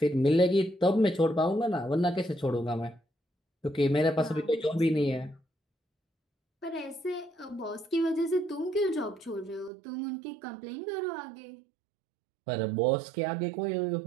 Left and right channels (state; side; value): drops out; left; at 9.7 s